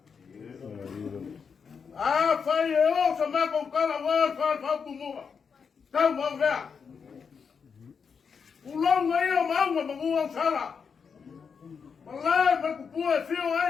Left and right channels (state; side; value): quieter; right; 6.1 dB